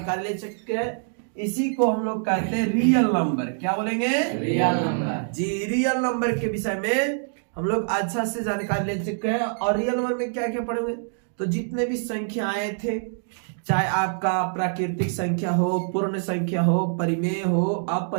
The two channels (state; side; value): silent; left; digital silence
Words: ले चुके हैं। इसी को हम लोग कहते हैं रियल नंबर। क्या बोलेंगे? Real number. जी, रियल नंबर के विषय में हम लोग अच्छा से जानकारी ले चुके हैं। और रियल नंबर में क्या क्या पढ़ेंगे, तो जितने भी संख्याएं थे, चाहे आपका प्राकृतिक संख्या हो, पूर्ण संख्या हो, परिमेय हो,